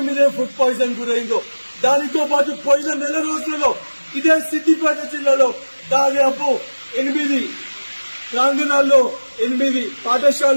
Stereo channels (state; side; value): inverted; both; correlation -1.00